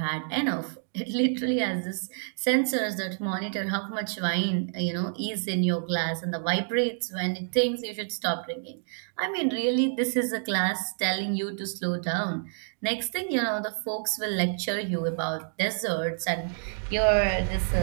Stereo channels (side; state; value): left; silent; digital silence